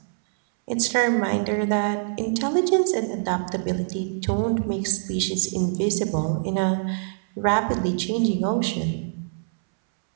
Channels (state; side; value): silent; left; 62 dB below the other